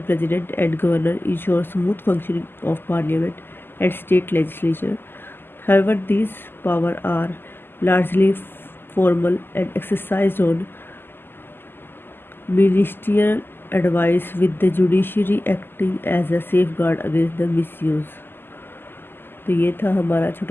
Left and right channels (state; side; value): late; right; 0.099 ms